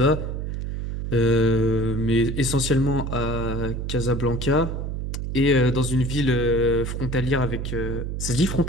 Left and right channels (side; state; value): right; noise; hum, 4 dB below the sound